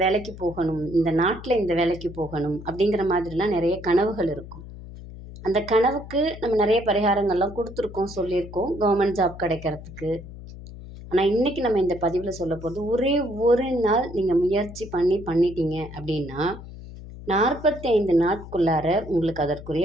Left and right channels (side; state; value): left; noise; hum, 14 dB below the sound